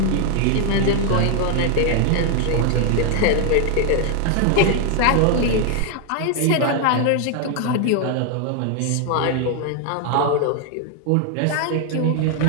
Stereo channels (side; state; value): both; different; correlation 0.01